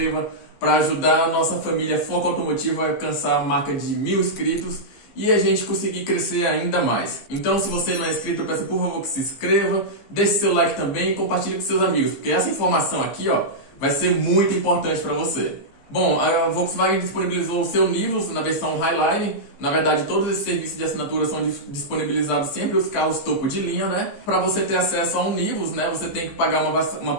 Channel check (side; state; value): right; late; 15 ms